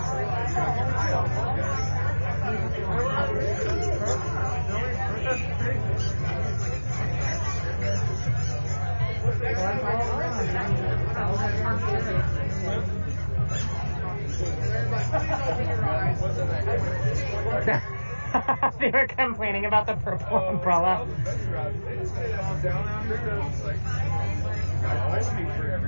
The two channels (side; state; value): both; inverted; correlation -1.00